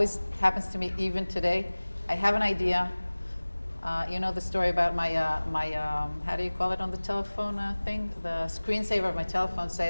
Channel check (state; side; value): inverted; both; correlation -1.00